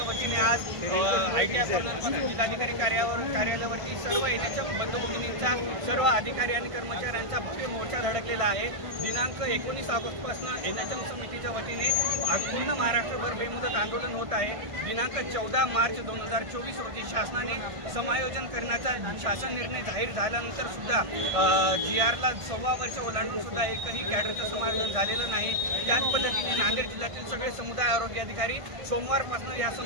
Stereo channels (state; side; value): late; left; 1.5 ms